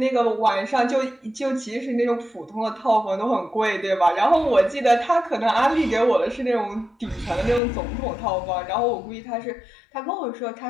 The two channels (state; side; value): drops out; right; at 7.6 s